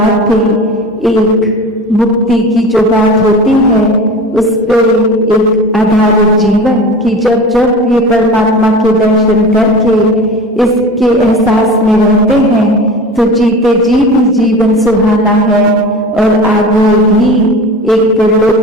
भी एक मुक्ति की जो बात होती है उस पर एक आधारित जीवन की जब जब ये परमात्मा के दर्शन करके इसके एहसास में रहते हैं तो जीते जी भी जीवन सुहाना है। और आगे भी एक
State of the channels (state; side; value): normal; both; correlation 0.34